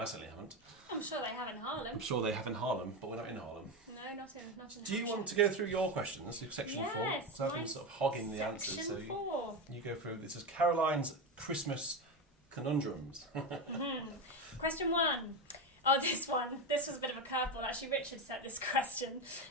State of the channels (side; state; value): both; normal; correlation 0.16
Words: certainly haven't. I'm sure they have in Harlem. I'm sure they have in Harlem, but we're not in Harlem. No, not in Do you want to go through your questions, section 4? Yes, Because I've been sort of hogging the answers. So Section 4. you go through. This is Caroline's Christmas Conundrums. Question 1. Oh, this one. This was a bit of a curveball. Actually, Richard set this question.